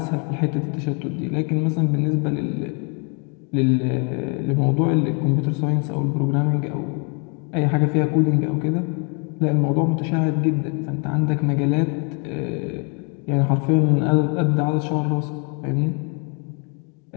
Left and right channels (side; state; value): right; quieter; 36.3 dB